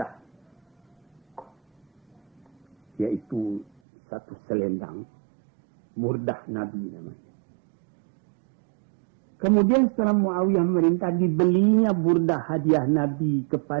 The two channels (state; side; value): drops out; left; at 3.7 s